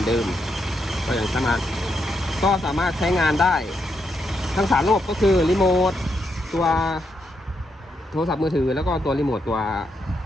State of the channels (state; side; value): normal; both; correlation 0.81